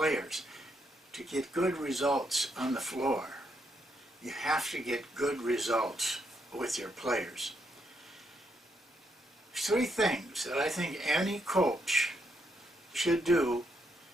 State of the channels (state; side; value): normal; both; correlation 0.78